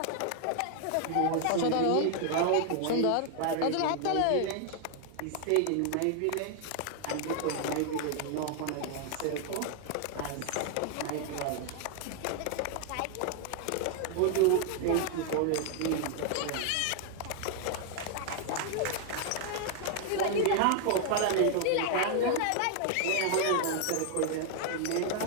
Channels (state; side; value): different; both; correlation 0.00